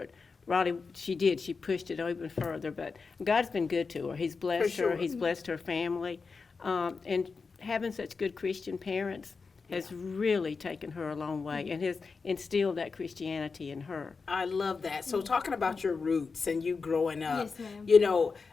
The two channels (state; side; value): quieter; right; 4.7 dB